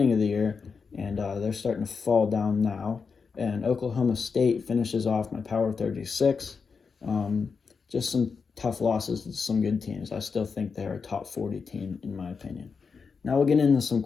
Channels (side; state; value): right; quieter; 5.4 dB